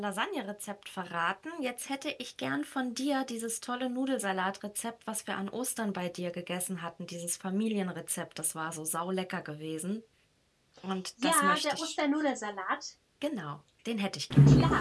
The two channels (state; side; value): identical; both; correlation 1.00